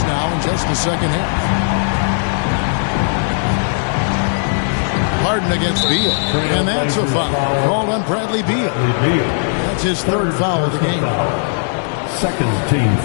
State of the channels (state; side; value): silent; right; digital silence